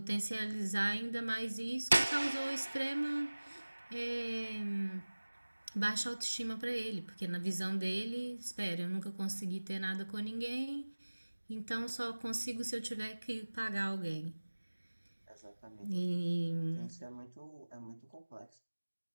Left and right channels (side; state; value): both; inverted; correlation -1.00